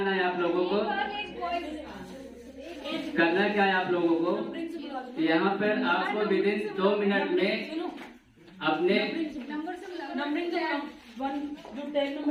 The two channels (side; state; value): both; identical; correlation 1.00